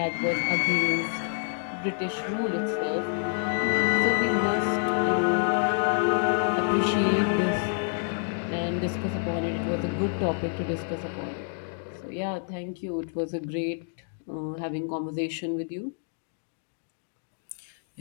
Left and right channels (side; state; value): right; silent; digital silence